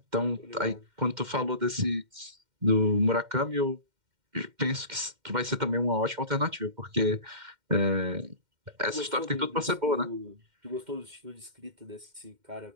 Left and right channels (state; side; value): late; left; 2.1 ms